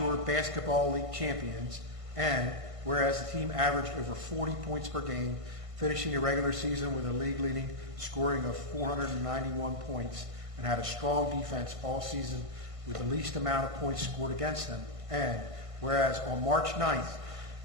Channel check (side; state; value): left; late; 1.5 ms